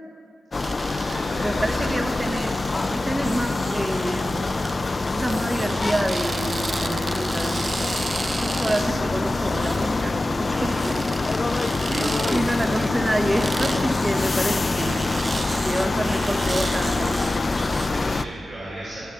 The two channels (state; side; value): normal; both; correlation 0.95